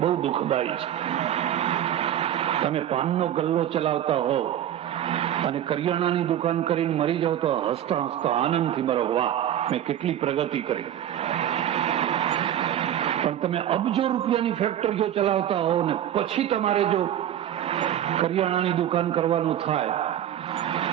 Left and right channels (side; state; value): left; quieter; 11.0 dB